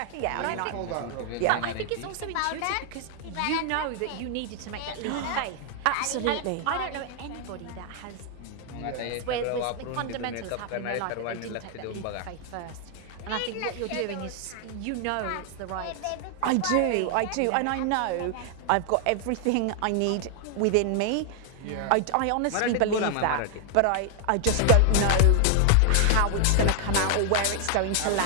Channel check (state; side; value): different; both; correlation 0.00